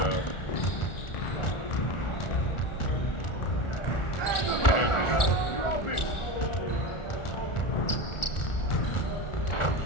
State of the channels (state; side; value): late; right; 1.4 ms